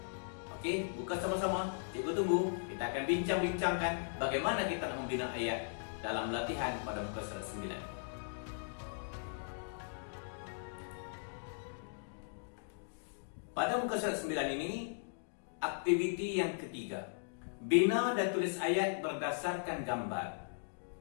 Okey, buka sama-sama. Cikgu tunggu. Kita akan bincang-bincangkan bagaimana kita nak membina ayat dalam latihan pada muka surat 9. Pada muka surat 9 ini, aktiviti yang ketiga, bina dan tulis ayat berdasarkan gambar.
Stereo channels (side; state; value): right; silent; digital silence